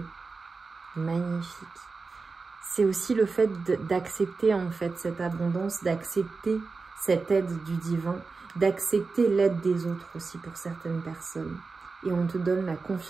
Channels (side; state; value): left; quieter; 4.3 dB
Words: Magnifique. C'est aussi le fait d'accepter en fait cette abondance, d'accepter cette aide du divin, d'accepter l'aide des autres aussi pour certaines personnes. Et on te donne la